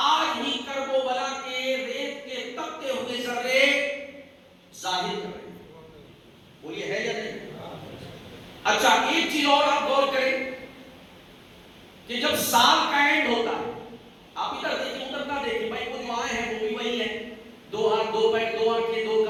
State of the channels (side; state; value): both; identical; correlation 1.00